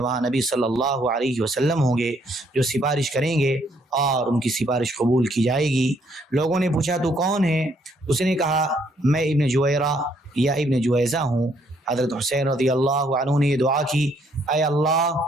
نبی صلی اللہ علیہ وسلم ہوں گے جو سفارش کریں گے اور ان کی سفارش قبول کی جائے گی۔ لوگوں نے پوچھا تو کون ہے؟ اس نے کہا میں ابن جویرہ یا ابن جویزہ ہوں۔ حضرت حسین رضی اللہ عنہ نے یہ دعا کی اے اللہ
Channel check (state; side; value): normal; both; correlation 0.69